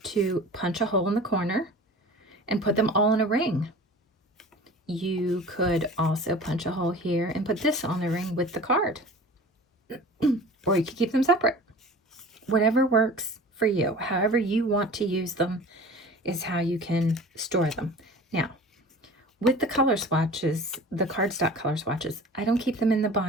to punch a hole in the corner and put them all in a ring. You could also punch a hole here and put this on the ring with the card. Or you could keep them separate. Whatever works for you. However you want to use them is how you can store them. Now, with the color swatches, the cardstock color swatches, I don't keep them in the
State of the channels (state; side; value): normal; both; correlation 0.40